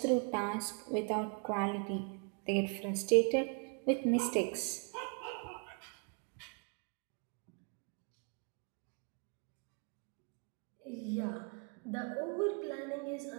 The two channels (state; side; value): quieter; left; 38.1 dB